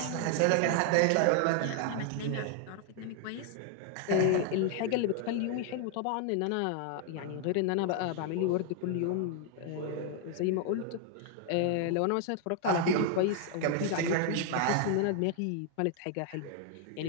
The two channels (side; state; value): both; different; correlation 0.00